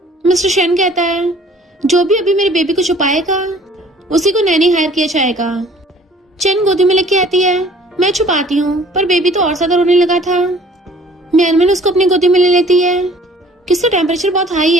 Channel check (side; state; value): both; normal; correlation 0.53